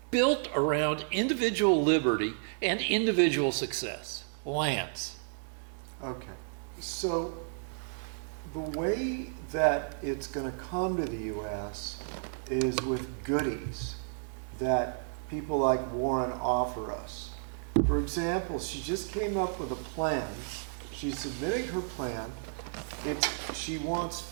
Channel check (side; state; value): left; silent; digital silence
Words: built around individual liberty and individual success. Lance. Okay. So the way that it's going to come to the U.S. is with goodies that people like Warren offer us. For example, she just came up with a plan. She's submitting her plan. She wants